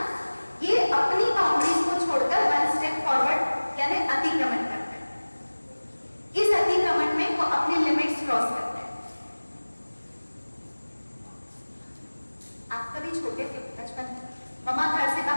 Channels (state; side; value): inverted; both; correlation -1.00